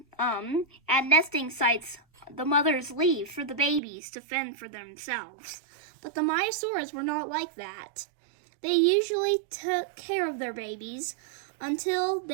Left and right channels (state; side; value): drops out; left; at 3.8 s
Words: at nesting sites, the mothers leave for the babies to fend for themselves. But the Maiasauras were not like that. They usually took care of their babies until